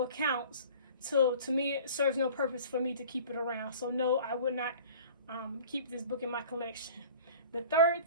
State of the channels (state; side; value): inverted; both; correlation -0.44